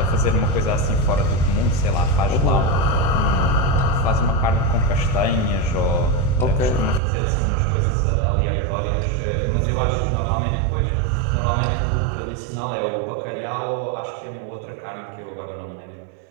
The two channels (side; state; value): left; drops out; at 7.0 s